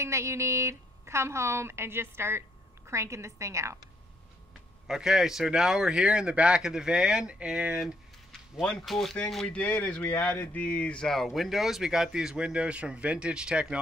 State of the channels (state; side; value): normal; both; correlation 0.72